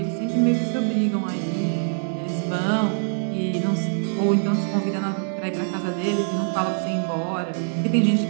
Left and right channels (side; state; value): left; silent; digital silence